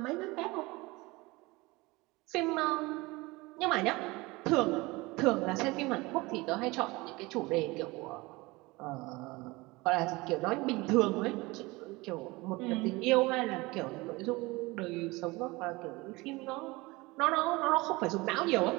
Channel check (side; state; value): left; quieter; 22.7 dB